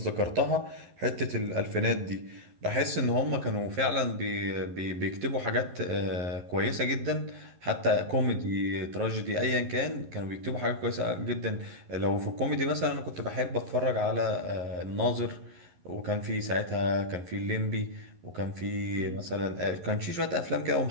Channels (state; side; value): late; left; 11 ms